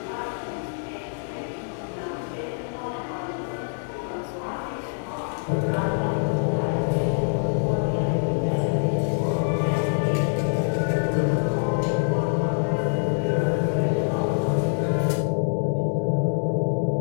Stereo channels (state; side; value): silent; right; 62 dB below the other